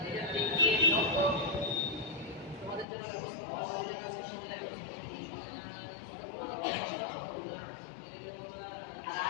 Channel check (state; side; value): drops out; right; at 2.9 s